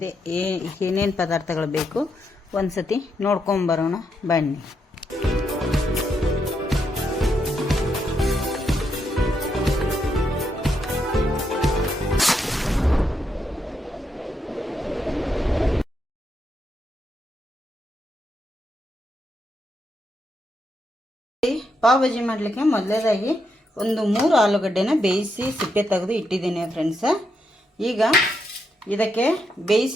ಏನೇನು ಪದಾರ್ಥಗಳು ಬೇಕು ಒಂದ್ಸತಿ ನೋಡ್ಕೊಂಬರೋಣ ಬನ್ನಿ. ಪಾವ್ ಭಾಜಿ ಮಾಡಲಿಕ್ಕೆ ಮೊದಲೇದಾಗಿ ಒಂದು 3 ಆಲೂಗಡ್ಡೆನ ಬೇಯಿಸಿ ಸಿಪ್ಪೆ ತೆಗೆದು ಇಟ್ಟಿದ್ದೀನಿ ಫ್ರೆಂಡ್ಸ. ಈಗ ಇದಕ್ಕೆ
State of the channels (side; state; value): both; normal; correlation 0.80